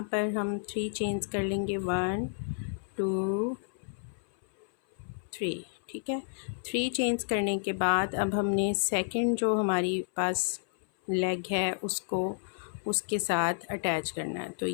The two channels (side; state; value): right; silent; 57 dB below the other